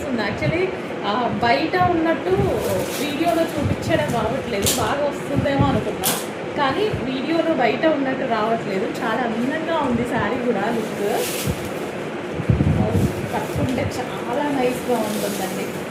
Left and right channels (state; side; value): identical; both; correlation 1.00